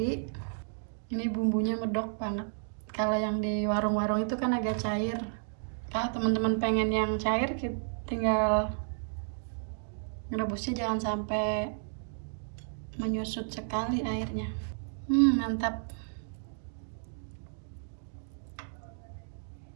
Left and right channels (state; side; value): silent; left; digital silence